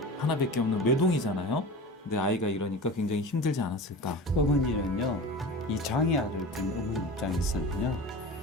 하나밖에 없는 외동이잖아요. 근데 아이가 이러니까 굉장히 힘들지 않았을까. 어머니는요, 이 장애아를 둔 어머니 입장에서는요,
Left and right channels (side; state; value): both; normal; correlation 0.33